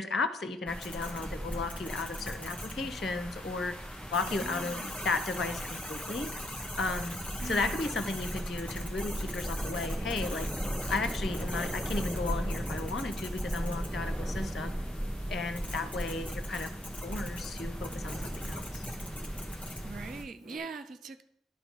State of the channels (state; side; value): normal; both; correlation 0.73